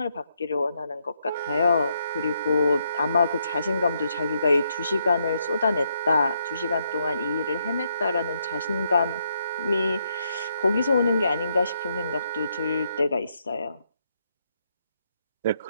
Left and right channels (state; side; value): inverted; both; correlation -0.77